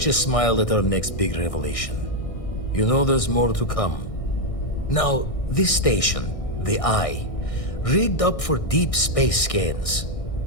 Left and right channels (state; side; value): late; right; 1.6 ms